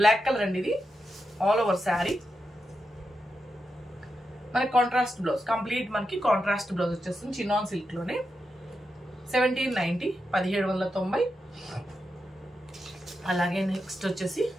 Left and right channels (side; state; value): both; normal; correlation 0.87